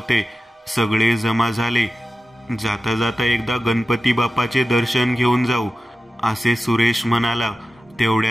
सगळे जमा झाले. जाता जाता एकदा गणपती बाप्पाचे दर्शन घेऊन जाऊ, असे सुरेश म्हणाला.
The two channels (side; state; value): both; normal; correlation 0.94